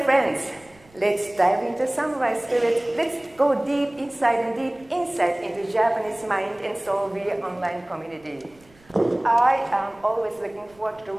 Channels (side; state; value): right; noise; rumble, 28 dB below the sound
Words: let's dive into samurai spirit. Let's go deep inside and deep insight into Japanese mind and soul via online community. I am always looking forward to